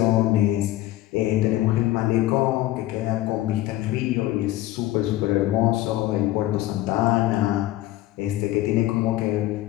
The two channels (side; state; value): right; quieter; 15.7 dB